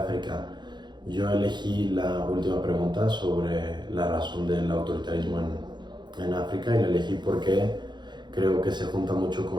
Yo elegí la última pregunta sobre la razón del autoritarismo en África y la elegí porque creo que se junta mucho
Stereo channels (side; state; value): left; late; 0.21 ms